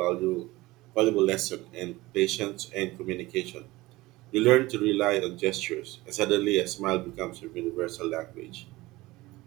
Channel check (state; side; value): quieter; left; 19.6 dB